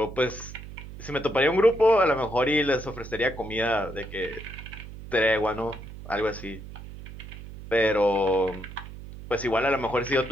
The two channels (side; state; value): right; noise; hum, 13 dB below the sound